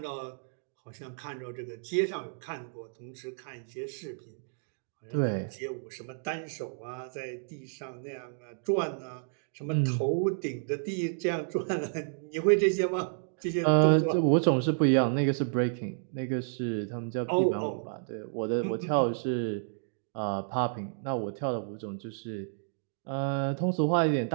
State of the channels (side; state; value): left; silent; digital silence